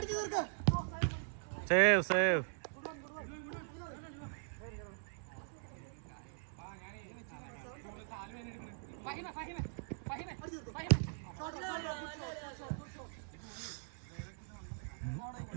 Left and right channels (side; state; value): left; silent; 51 dB below the other